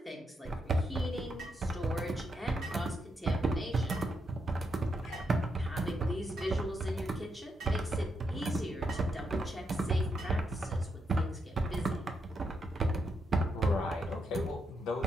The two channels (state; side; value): normal; both; correlation 0.81